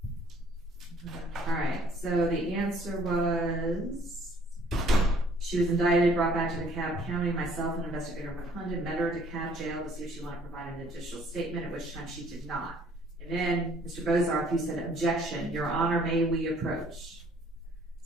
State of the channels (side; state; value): both; normal; correlation 0.60